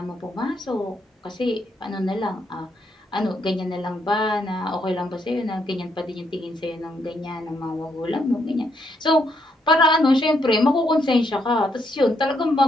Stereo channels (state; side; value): normal; both; correlation 0.76